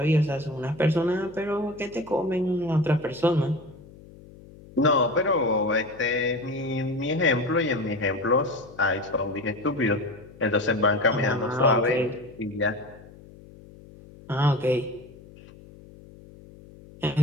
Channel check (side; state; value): left; noise; hum, 21 dB below the sound